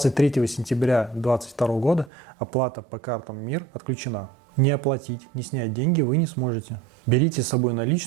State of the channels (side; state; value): left; drops out; at 2.1 s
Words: сентября 2022 года оплата по картам МИР отключена. Не оплатить, не снять деньги вы не сможете. Берите с собой